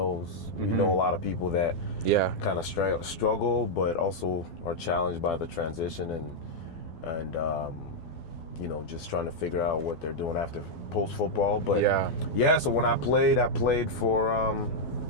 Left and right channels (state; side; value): late; right; 12 ms